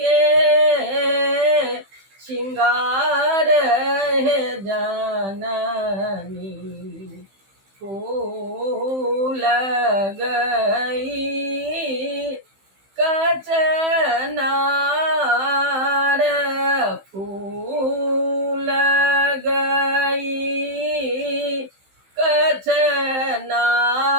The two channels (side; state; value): left; late; 15 ms